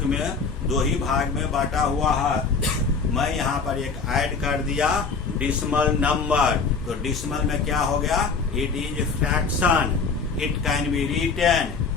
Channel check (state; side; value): quieter; right; 4.9 dB